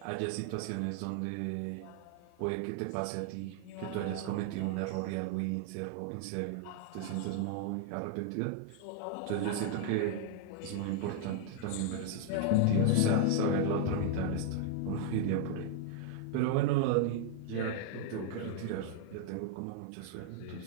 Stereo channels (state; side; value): different; both; correlation 0.00